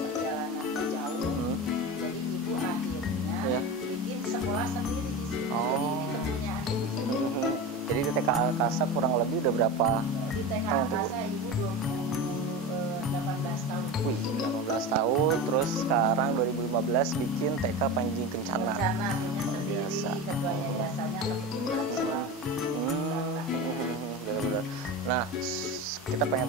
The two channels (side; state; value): both; normal; correlation 0.26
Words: jauh, jadi ibu akhirnya bikin sekolah sendiri di sini. Jadi ini kepunyaan ibu sendiri. Jadi di TK Angkasa kurang lebih udah berapa? Di TK Angkasa ibu 18 tahun. Wih, 18 tahun. Terus sekarang 2015 bikin TK Panji Kencana. Kencana punya sendiri, ketua yayasannya kebetulan suami. Benar-benar. Nah, kita pengen